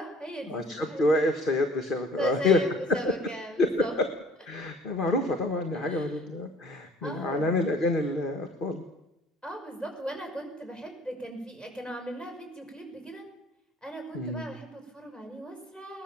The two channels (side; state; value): both; normal; correlation 0.53